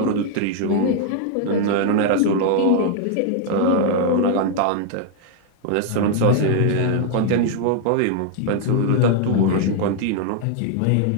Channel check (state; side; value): different; both; correlation 0.00